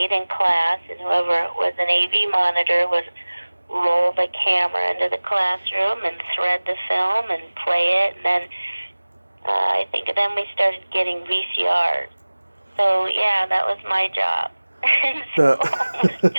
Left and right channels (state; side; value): inverted; both; correlation -1.00